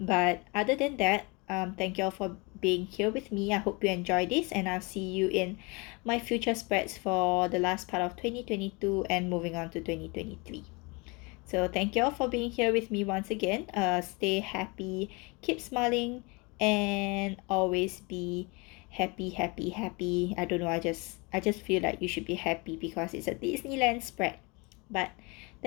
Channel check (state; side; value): quieter; right; 28.2 dB